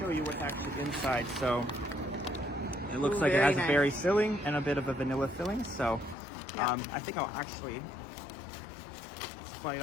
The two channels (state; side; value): drops out; right; at 6.2 s